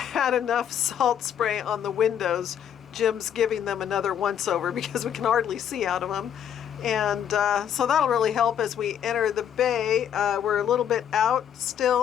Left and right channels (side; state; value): right; quieter; 9.3 dB